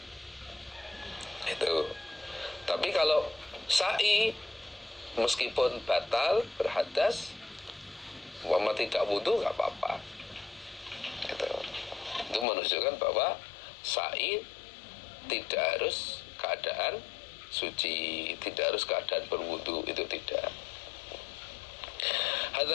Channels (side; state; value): right; drops out; at 12.5 s